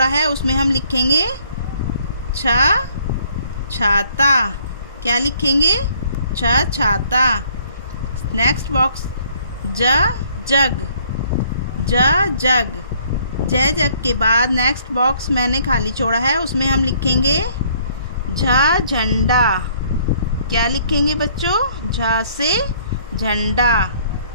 है उसमें हम लिखेंगे छा छाता। क्या लिखेंगे? छा छाता। नेक्स्ट बॉक्स ज जग। ज जग। जय जग के बाद नेक्स्ट बॉक्स मैंने खाली छोड़ा है उसमें हम लिखेंगे झा झंडा। क्या लिखेंगे बच्चों? झा से झंडा।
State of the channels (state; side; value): inverted; both; correlation -0.61